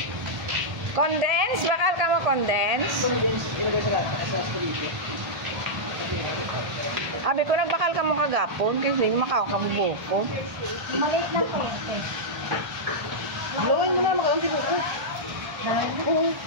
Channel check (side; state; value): left; late; 1.8 ms